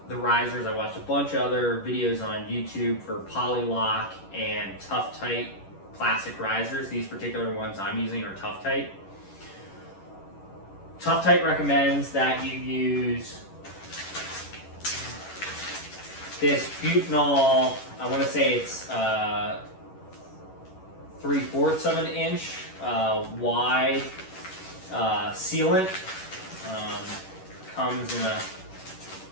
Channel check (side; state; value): right; late; 10 ms